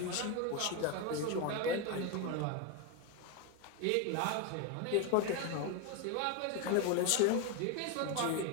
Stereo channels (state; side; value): different; both; correlation 0.02